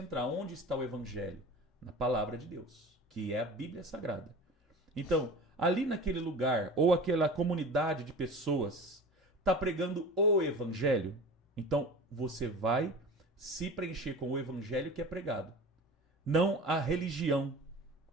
onde está o evangelho? Na palavra de Deus, que é a Bíblia Sagrada. Então, ali naquele lugar, ou aquela comunidade de pessoas, está pregando o evangelho, então você vai se preencher com o evangelho que é pregado. Não a religião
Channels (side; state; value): both; normal; correlation 0.37